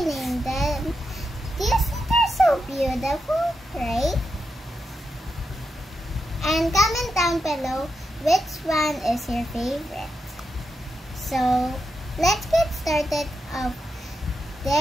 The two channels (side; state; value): both; normal; correlation 0.86